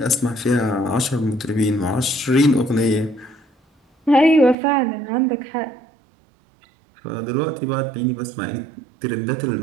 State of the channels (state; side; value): drops out; left; at 4.5 s